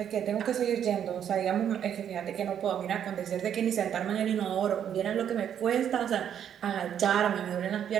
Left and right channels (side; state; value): left; quieter; 9.2 dB